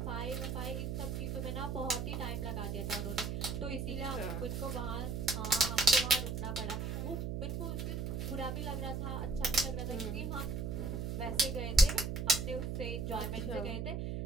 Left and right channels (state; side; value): noise; right; hum, 2 dB below the sound